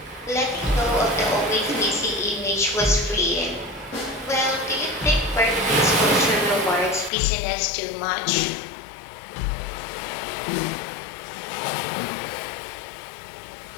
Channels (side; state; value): right; drops out; at 7.1 s